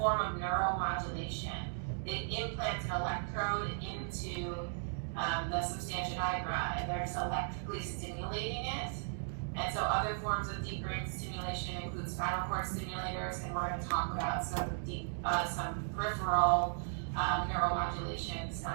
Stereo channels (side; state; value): left; silent; digital silence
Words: of neuromodulation. They implant an electrode into the substantia nigra, and they're just electrically stimulating it. And so other forms of deep brain stimulation include spinal cord stimulators, and we're going to talk about some peripheral neuromodulation,